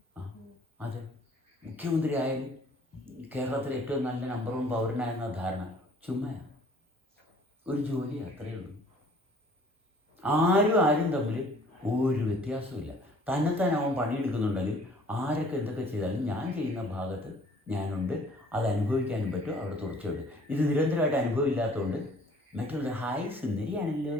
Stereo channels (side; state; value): both; normal; correlation 0.55